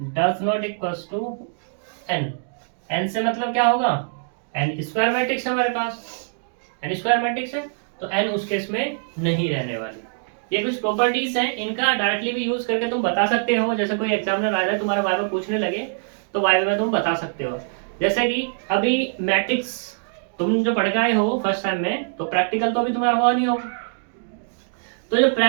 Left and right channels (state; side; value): silent; left; digital silence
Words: does not equals to N. N से मतलब क्या होगा? एन स्क्वायर मैट्रिक्स है हमारे पास, एन स्क्वायर मैट्रिक्स है, तो एन उस केस में नहीं रहने वाली। ये कुछ प्रॉपर्टीज हैं, इनका डायरेक्टली भी यूज करके तुम बता सकते हो, जैसे कोई एग्जामिनर आ जाए तुम्हारे वाइवा पूछने लगे तो वाइवा में तुम बता सकते हो। जैसे कि अभी मैट्रिक्स तुम जो पढ़ गए हो फर्स्ट टाइम में, तो प्रैक्टिकल तो अभी तुम्हारा हुआ नहीं होगा, तो जो